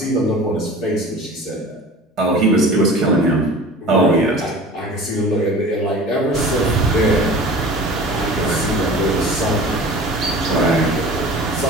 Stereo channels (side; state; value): both; normal; correlation 0.40